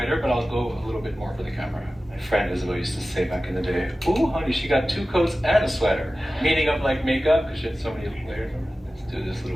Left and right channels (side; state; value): both; normal; correlation 0.95